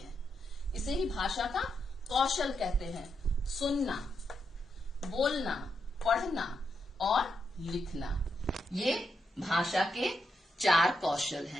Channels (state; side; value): normal; both; correlation 0.82